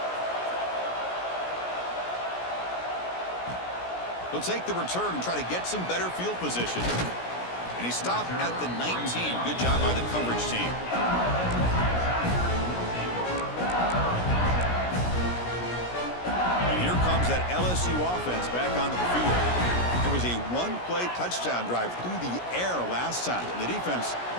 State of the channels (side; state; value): right; late; 17 ms